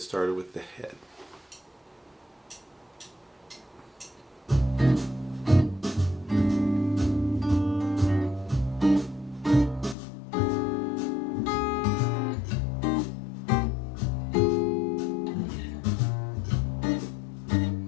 started with the head.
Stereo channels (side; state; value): right; drops out; at 10.0 s